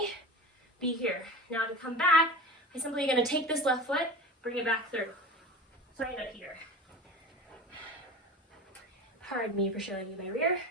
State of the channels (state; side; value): normal; both; correlation 0.32